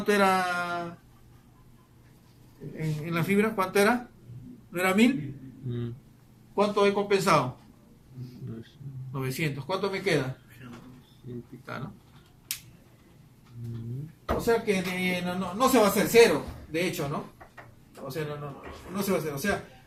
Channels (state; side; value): identical; both; correlation 1.00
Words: era en la fibra? ¿Cuánto era? ¿No era 1000? ¿Cuánto he compensado? 900. ¿Cuánto me queda? ¿No? O sea que no se va a hacer cero, de hecho, ¿no? O sea, no se va a hacer. O sea,